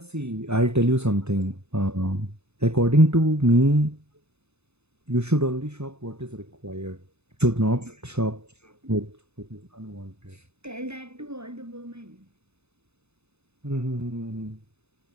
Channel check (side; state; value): left; late; 0.80 ms